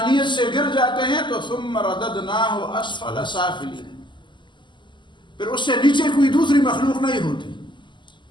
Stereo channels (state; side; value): late; right; 0.23 ms